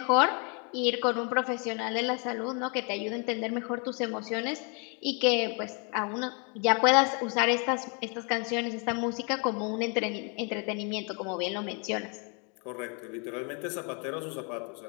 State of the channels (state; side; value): quieter; right; 35.8 dB